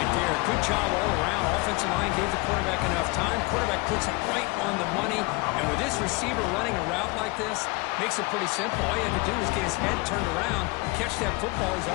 there. Good job all around. Offensive line gave the quarterback enough time. Quarterback puts it right on the money. And with this receiver running a route like this, makes it pretty simple. All you have to do is get his head turned around, catch that football. He's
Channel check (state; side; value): quieter; right; 25.2 dB